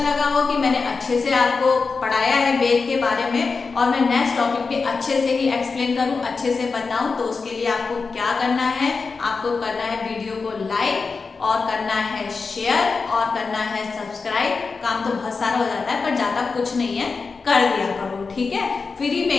हो कि मैंने अच्छे से आपको पढ़ाया है वेद के बारे में और मैं नेक्स्ट टॉपिक पे अच्छे से ही एक्सप्लेन करूँ, अच्छे से बताऊँ, तो उसके लिए आपको क्या करना है, आपको करना है वीडियो को लाइक और करना है शेयर और करना है सब्सक्राइब। काम तो बहुत सारा हो जाता है पर ज़्यादा कुछ नहीं है, कर दिया करो, ठीक है। फ्री में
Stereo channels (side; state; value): right; quieter; 4.6 dB